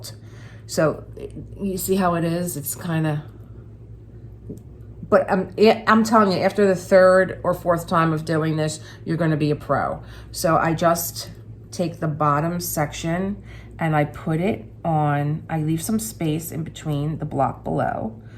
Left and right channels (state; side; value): identical; both; correlation 1.00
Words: So you see how it is? It's kind of, but I'm telling you, after the 3rd or 4th time of doing this, you're going to be a pro. So I just take the bottom section and I put it on, I leave some space in between the block below,